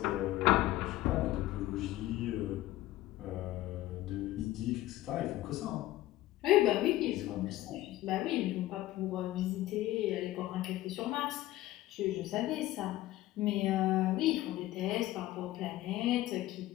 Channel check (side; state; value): right; quieter; 15.8 dB